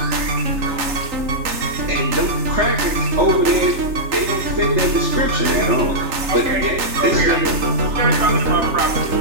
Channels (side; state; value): left; late; 3.3 ms